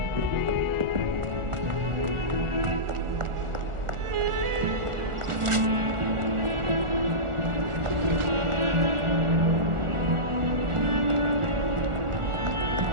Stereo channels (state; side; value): late; left; 1.4 ms